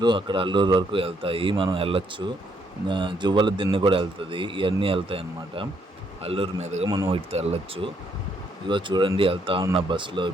అక్కడ అల్లూరు వరకు వెళ్తాయి. మనం వెళ్ళొచ్చు. జువ్వల దిన్నె కూడా వెళ్తుంది. ఇవన్నీ వెళ్తాయి అన్నమాట. అల్లూరు మీదుగా మనం వీటితో వెళ్ళొచ్చు. ఇదిగో చూడండి వెళ్తా ఉన్న బస్సులో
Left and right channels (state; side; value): normal; both; correlation 0.72